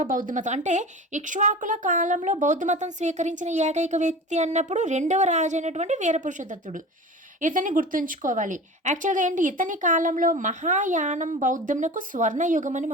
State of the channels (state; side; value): normal; both; correlation 0.34